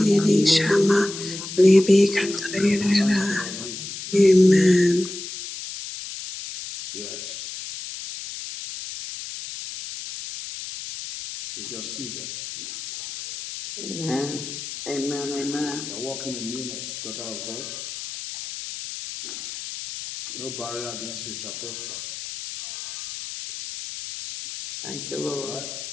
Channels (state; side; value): noise; left; hiss, 9 dB below the sound